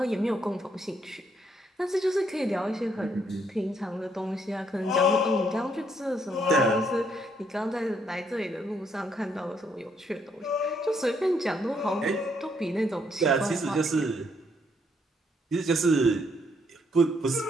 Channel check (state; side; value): normal; both; correlation 0.72